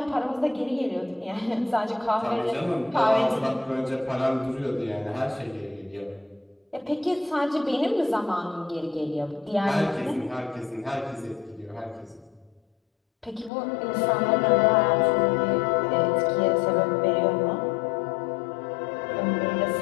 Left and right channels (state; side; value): drops out; right; at 13.5 s